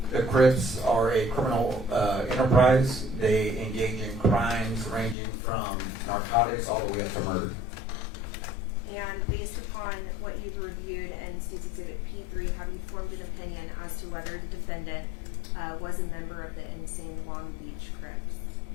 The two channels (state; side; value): drops out; right; at 5.2 s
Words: The Crips are a criminal enterprise. They engage in crimes ranging from narcotics all the way up to murder. And based upon what you've reviewed and State's Exhibit P3, have you formed an opinion as to whether the defendant was a member of the Insane Long Beach Crips?